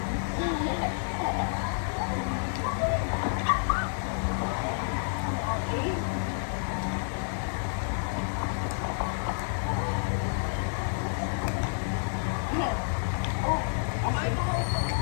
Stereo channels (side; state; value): right; silent; digital silence